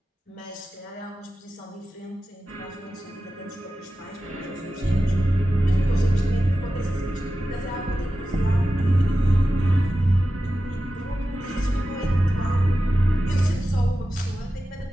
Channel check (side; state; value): both; normal; correlation 0.93